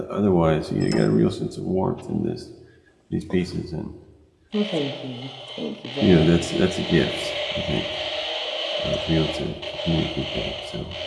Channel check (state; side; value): identical; both; correlation 1.00